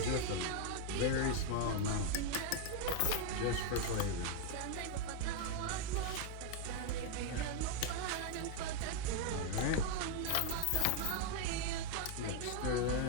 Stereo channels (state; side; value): different; both; correlation 0.01